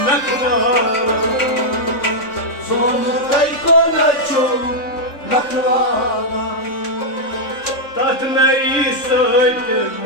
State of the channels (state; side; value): late; right; 3.6 ms